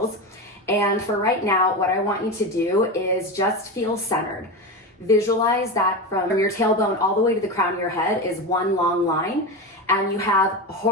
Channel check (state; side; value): normal; both; correlation 0.20